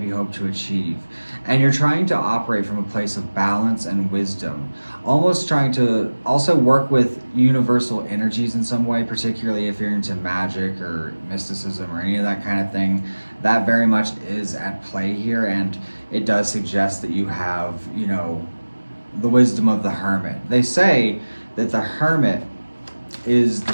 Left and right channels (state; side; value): inverted; both; correlation -1.00